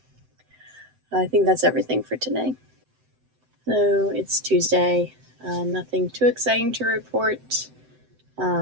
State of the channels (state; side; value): late; left; 7.8 ms